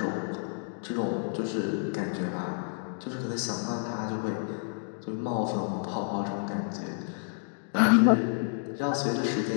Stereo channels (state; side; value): silent; right; digital silence